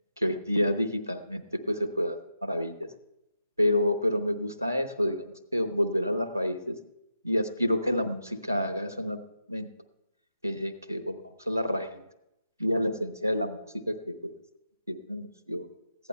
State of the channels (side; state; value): both; inverted; correlation -0.86